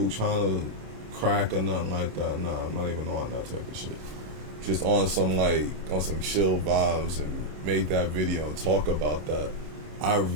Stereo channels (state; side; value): late; left; 27 ms